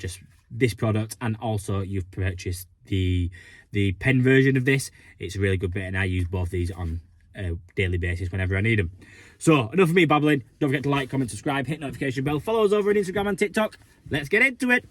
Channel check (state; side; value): identical; both; correlation 1.00